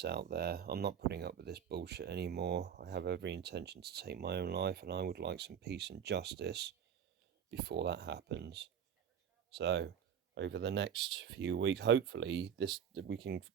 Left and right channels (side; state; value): left; quieter; 8.3 dB